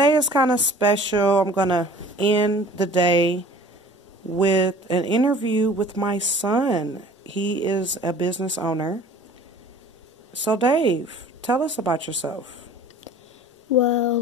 is kind of special. I'm going to end the day with an interview with my son. He is a business owner. So, Dave, tell us about yourself.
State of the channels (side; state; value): both; normal; correlation 0.47